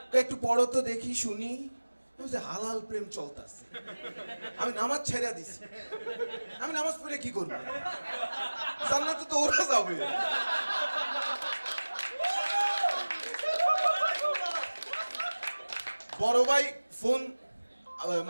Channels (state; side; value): inverted; both; correlation -1.00